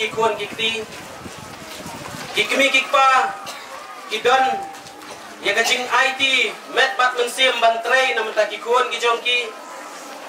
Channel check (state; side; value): identical; both; correlation 1.00